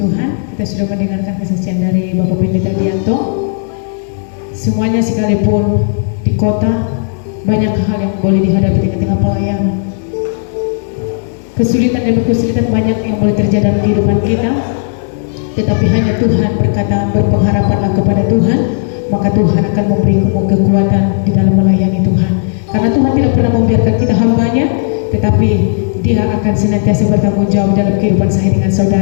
Tuhan, kita sudah mendengarkan kesaksian dari Bapak Pendeta Dianto. Semuanya sekalipun di kota, banyak hal yang boleh dihadapi di tengah pelayanan. Kesulitan demi kesulitan banyak yang boleh terjadi dalam kehidupan kita. Tetapi hanya Tuhan berkata, berpengharapanlah kepada Tuhan, maka Tuhan akan memberi kekuatan di dalam melayani Tuhan. Karena Tuhan tidak pernah membiarkan kita hambanya, tetapi Dia akan senantiasa bertanggung jawab dalam kehidupan saya dengan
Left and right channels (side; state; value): right; silent; digital silence